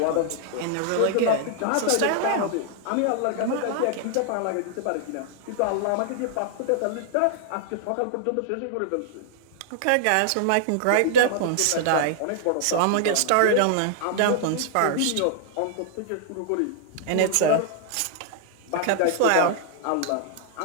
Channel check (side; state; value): both; different; correlation -0.01